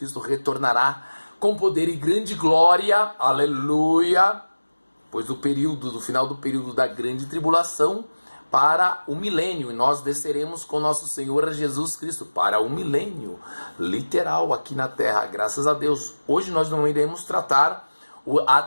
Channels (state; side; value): inverted; both; correlation -1.00